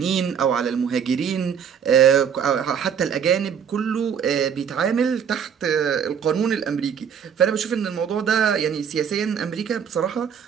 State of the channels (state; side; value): quieter; left; 7.7 dB